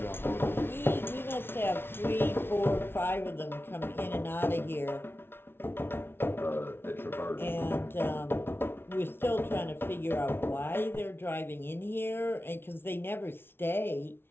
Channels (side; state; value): right; late; 0.11 ms